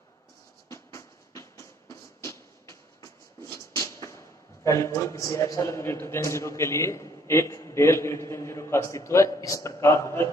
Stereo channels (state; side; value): normal; both; correlation 0.63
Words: किसी एप्सिलॉन ग्रेटर देन 0 के लिए एक डेल ग्रेटर देन 0 का अस्तित्व है, इस प्रकार होगा।